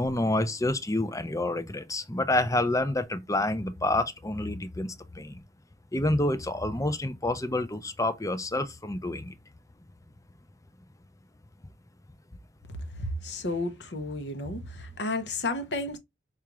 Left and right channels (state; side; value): normal; both; correlation 0.58